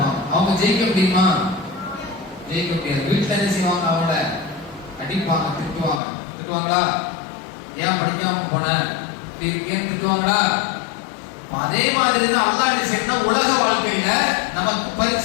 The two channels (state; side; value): drops out; right; at 6.0 s